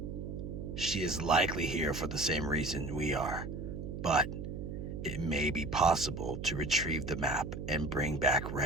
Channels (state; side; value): noise; right; hum, 7 dB below the sound